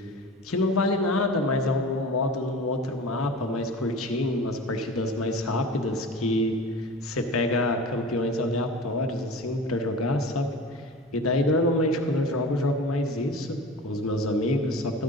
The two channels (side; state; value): both; normal; correlation 0.35